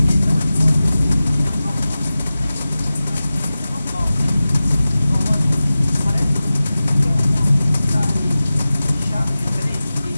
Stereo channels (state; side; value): inverted; both; correlation -0.95